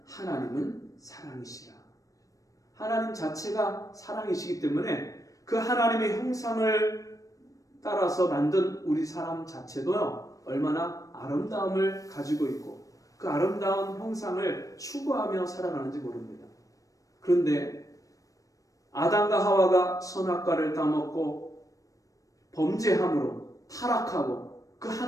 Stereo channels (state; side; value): late; right; 0.16 ms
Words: 하나님은 사랑이시라. 하나님 자체가 사랑이시기 때문에 그 하나님의 형상을 따라서 만든 우리 사람 자체도요, 얼마나 아름다움을 가지고 있고 그 아름다운 형상을 추구하며 살아가는지 모릅니다. 그런데 아담과 하와가 선악과를 따먹고 범죄함으로 타락하고 그